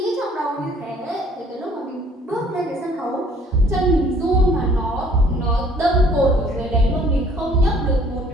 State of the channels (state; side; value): normal; both; correlation 0.56